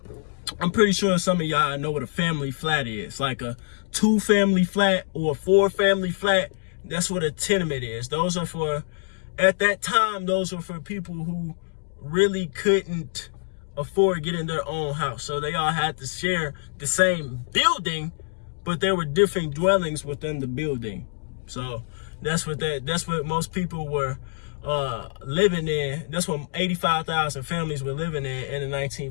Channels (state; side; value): silent; right; digital silence